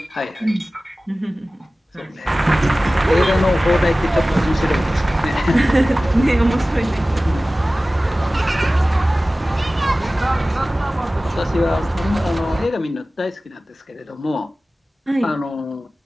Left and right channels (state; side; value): normal; both; correlation 0.97